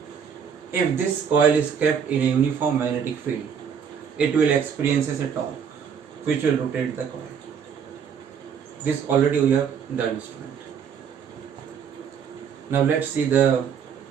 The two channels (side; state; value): left; quieter; 7.2 dB